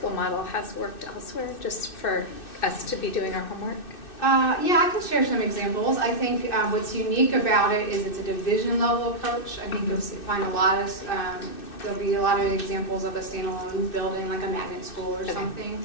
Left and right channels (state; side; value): late; right; 2.6 ms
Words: model has worked elsewhere, just for us to be doing our homework? Yeah, I can share some examples. I think what's unique about it is it's a division level approach. I think you'll find a lot of, there'll be a lot of examples of a standalone building like a magnet school or something.